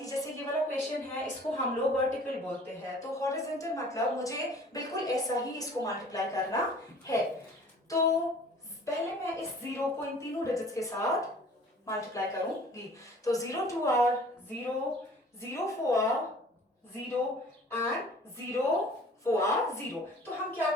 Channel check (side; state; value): both; normal; correlation 0.49